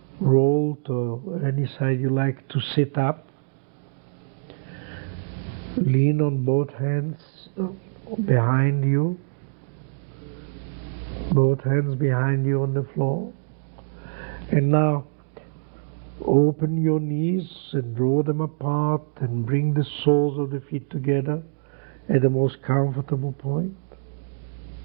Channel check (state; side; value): silent; left; digital silence